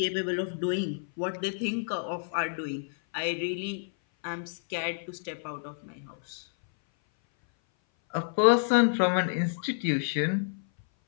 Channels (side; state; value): right; silent; 57 dB below the other